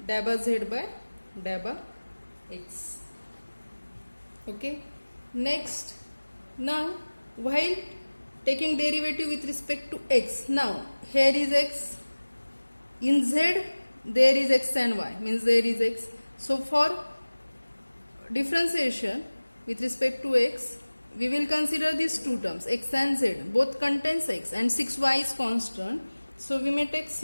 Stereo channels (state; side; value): inverted; both; correlation -1.00